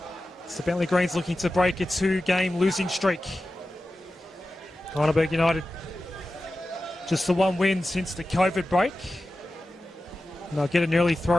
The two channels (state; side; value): normal; both; correlation 0.94